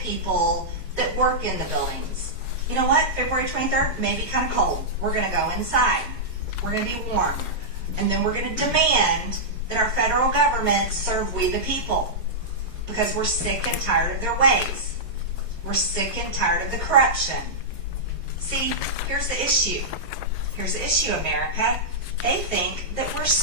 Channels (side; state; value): both; normal; correlation -0.11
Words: people that work in the buildings. You know what? February 23rd may be kind of cold. We're going to go inside. We're going to be warm. And then we're going to demand that our federal government serve we the people. Because we're sick and tired of their ways. We're sick and tired of the corruption. See, here's the issue. Here's the issue, America. They think that we're